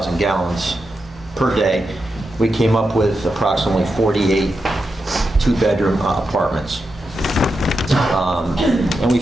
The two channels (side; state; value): both; normal; correlation 0.88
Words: gallons per day, we came up with approximately 48 two-bedroom apartments. And we